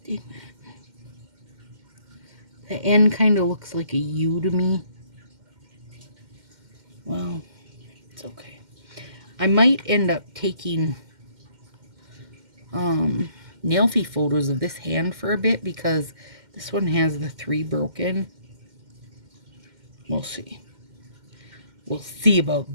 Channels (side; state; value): left; late; 2.1 ms